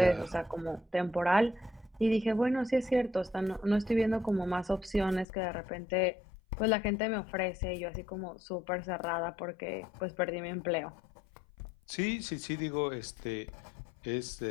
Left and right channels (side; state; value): right; drops out; at 5.2 s